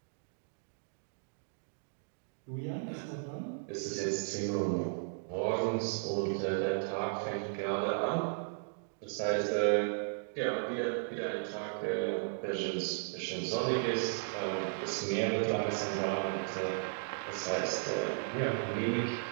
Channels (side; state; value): left; silent; digital silence